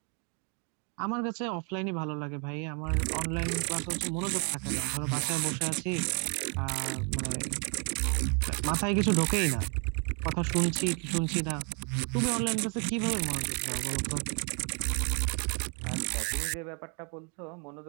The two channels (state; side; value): quieter; left; 37.2 dB